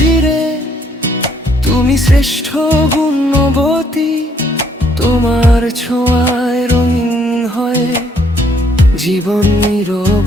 ভিড়ে তুমি শ্রেষ্ঠ গুণবতী, তোমার ছোঁয়ায় রঙিন হয় জীবন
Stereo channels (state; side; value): normal; both; correlation 0.67